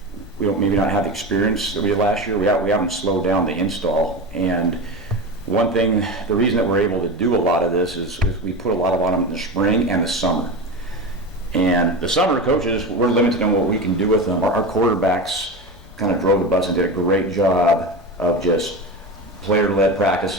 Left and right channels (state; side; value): normal; both; correlation 0.24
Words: we don't maybe not have the experience that we did last year. We haven't slowed down the install. And one thing, the reason that we're able to do a lot of this is we put a lot on them in the spring and the summer. And the summer coaches, we're limited on what we can do with them. Our quarterbacks kind of drove the bus and did a great job of just player-led